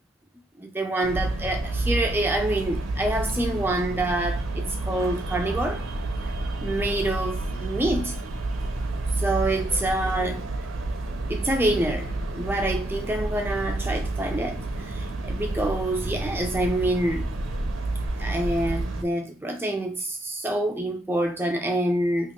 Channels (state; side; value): normal; both; correlation 0.76